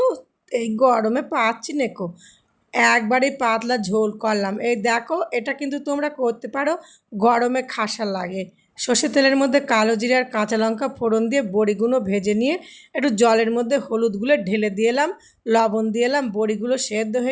এই গরমে পাচ্ছি নেকো। একবারেই পাতলা ঝোল করলাম। এই দেখো, এটা কিন্তু তোমরা করতে পারো, গরমে খাসা লাগে। সর্ষের তেলের মধ্যে কালো জিরে আর কাঁচা লঙ্কা ফোড়ন দিয়ে বড়িগুলো ভেজে নিয়ে একটু জলের মধ্যে হলুদগুলো ঢেলে দিয়ে এলাম, লবণ দিয়ে এলাম। বড়িগুলো সেদ্ধ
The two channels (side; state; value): both; identical; correlation 1.00